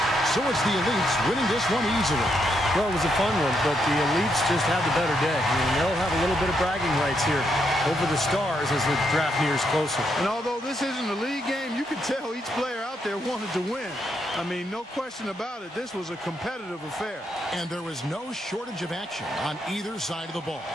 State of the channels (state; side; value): normal; both; correlation 0.78